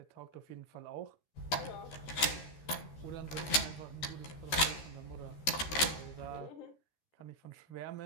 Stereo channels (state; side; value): late; right; 13 ms